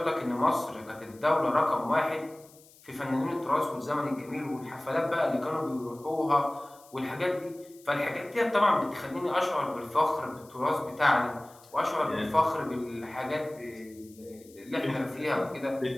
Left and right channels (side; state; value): left; noise; hiss, 25 dB below the sound